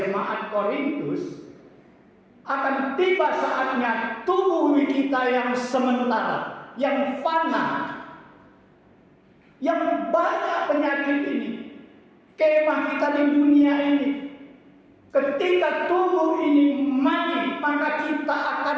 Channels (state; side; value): identical; both; correlation 1.00